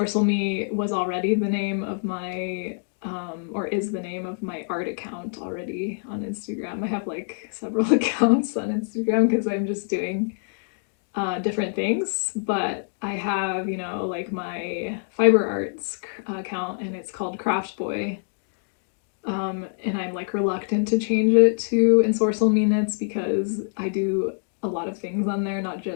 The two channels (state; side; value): silent; right; digital silence